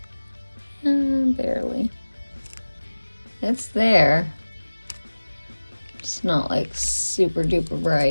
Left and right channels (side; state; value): both; inverted; correlation -1.00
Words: Barely. It's there. It's not like super duper